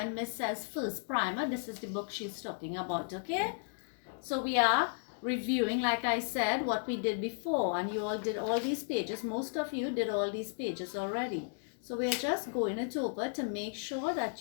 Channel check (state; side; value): silent; right; digital silence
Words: Miss says first primer, this is the book she's talking about, okay? So we are reviewing, like I said, what we did before, and you all did all these pages. Most of you did all these pages already. So we are just going it over to make sure